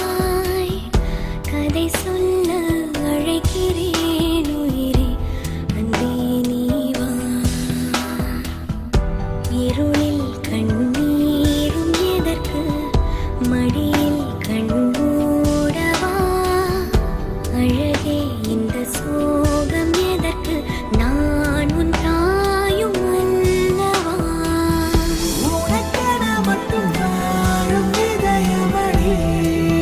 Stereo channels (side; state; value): both; identical; correlation 1.00